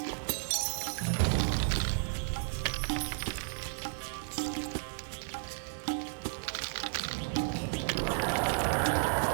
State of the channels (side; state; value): left; silent; digital silence